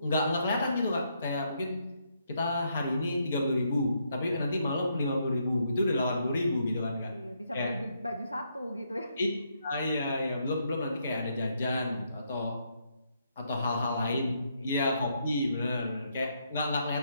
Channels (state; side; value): inverted; both; correlation -0.76